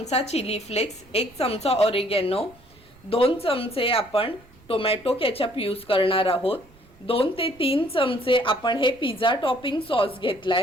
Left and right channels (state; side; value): noise; right; rumble, 27 dB below the sound